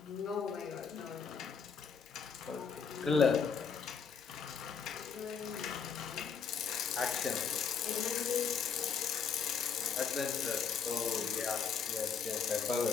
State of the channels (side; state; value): right; quieter; 6.3 dB